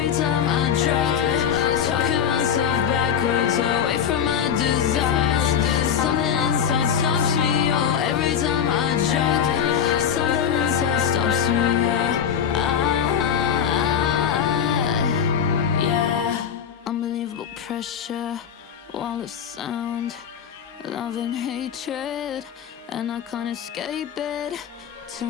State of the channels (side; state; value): right; quieter; 8.2 dB